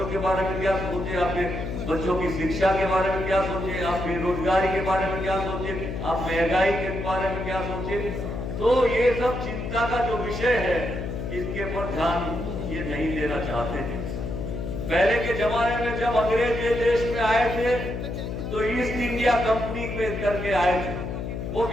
के बारे में क्या सोचे, आपके बच्चों की शिक्षा के बारे में क्या सोचे, आप बेरोजगारी के बारे में क्या सोचे, आप महंगाई के बारे में क्या सोचे। तो ये सब चिंता का जो विषय है, इसके पर ध्यान ये नहीं देना चाहते थे। पहले के जमाने में जब अंग्रेज ये देश में आए थे, तो ईस्ट इंडिया कंपनी में करके आए थे, वो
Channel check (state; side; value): noise; left; hum, 5 dB below the sound